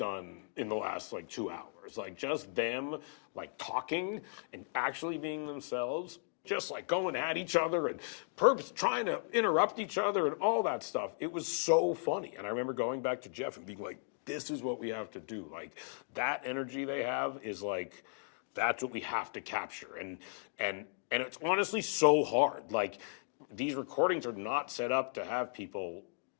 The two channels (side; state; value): right; silent; digital silence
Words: in the last like 2 hours. Like just them like talking and actually being themselves, just like going at each other and trying to interrupt each other and all that stuff. It was so funny. And I remember going back to Jeff and being like, this is what we have to do. Like that energy they have is like, that's what we have to capture. And it's honestly so hard. Like these recordings are not set up to have people